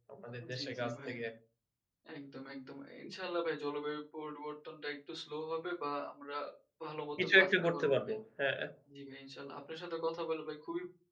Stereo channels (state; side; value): identical; both; correlation 1.00